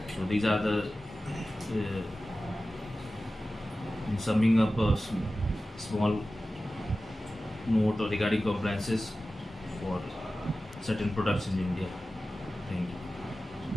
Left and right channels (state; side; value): normal; both; correlation 0.95